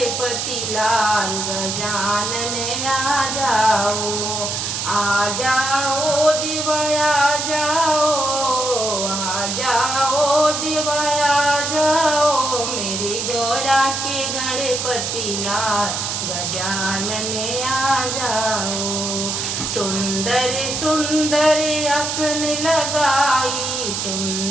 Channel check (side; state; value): right; noise; hiss, 2 dB below the sound